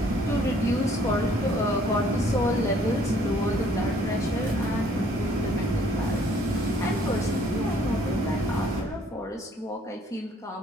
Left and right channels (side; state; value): both; normal; correlation 0.61